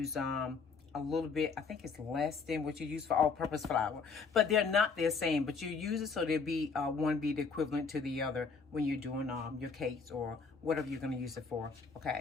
a little bit. I think it's less than what you use for all-purpose flour. But they're not the same. But you use it so they'll be one be the equivalent to the other when you're doing your cakes or whatever you're going to use it for.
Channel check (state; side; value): quieter; right; 4.9 dB